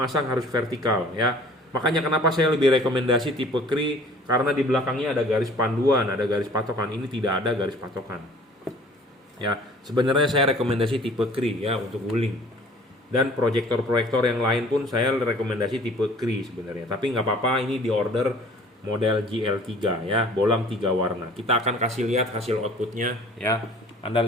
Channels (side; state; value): both; normal; correlation 0.50